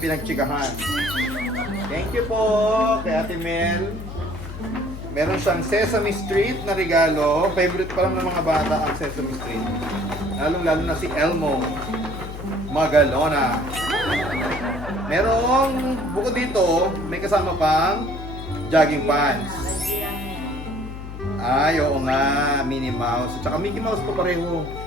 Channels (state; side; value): noise; left; hum, 10 dB below the sound